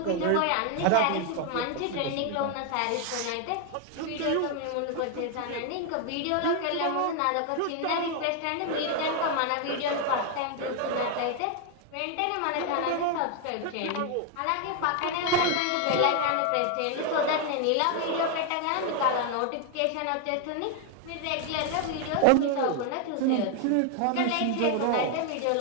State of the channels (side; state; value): both; different; correlation 0.01